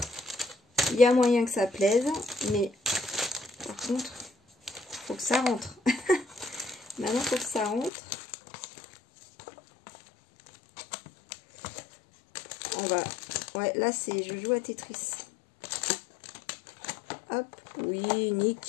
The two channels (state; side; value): drops out; right; at 7.9 s